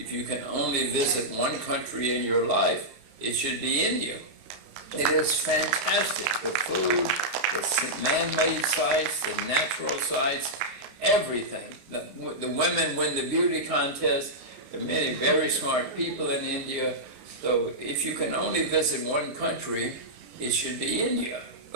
you can only visit one country in your life, it should be India. It is fantastic. The food, the man-made sites, the natural sites, everything. The women win the beauty contest. There are many very smart people in India. So if you can only visit one country, it should be India.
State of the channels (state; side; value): late; left; 32 ms